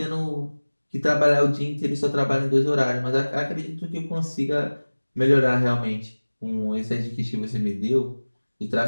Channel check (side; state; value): both; inverted; correlation -1.00